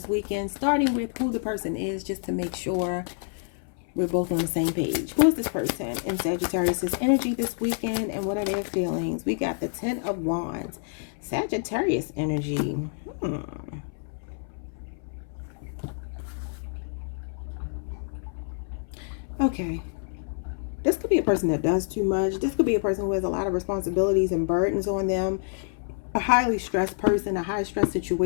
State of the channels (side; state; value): right; silent; 60 dB below the other